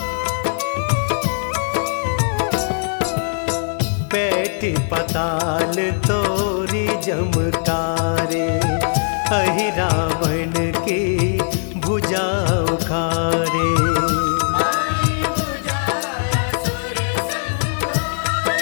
पैठ पताल तोरी जमकारे, अहि रावण की भुजा उखारे। माई बुझाया सुर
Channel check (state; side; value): silent; right; digital silence